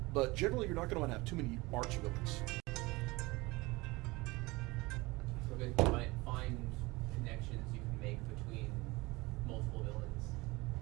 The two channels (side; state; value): left; quieter; 22.6 dB